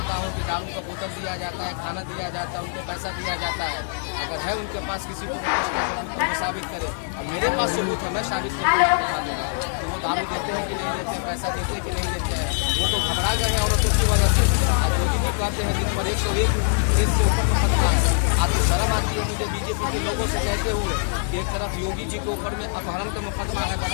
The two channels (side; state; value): right; silent; 60 dB below the other